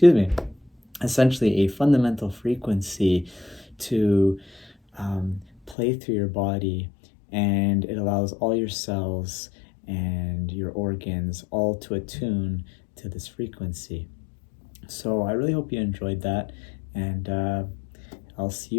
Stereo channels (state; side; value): drops out; right; at 5.8 s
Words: me, essentially a fundamental frequency to play through your body, and it allows all your cells and your organs all to attune to this frequency. So I really hope you enjoyed that, and I'll see